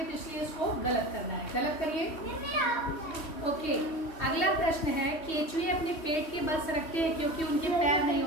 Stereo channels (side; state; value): right; late; 3.1 ms